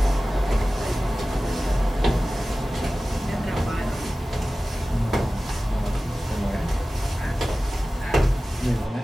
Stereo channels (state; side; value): normal; both; correlation 0.96